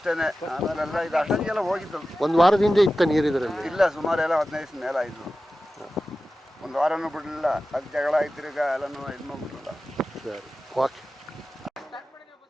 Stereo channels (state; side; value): normal; both; correlation 0.94